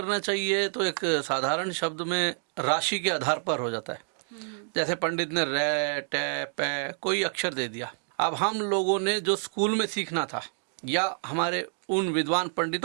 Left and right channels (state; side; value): silent; left; 59 dB below the other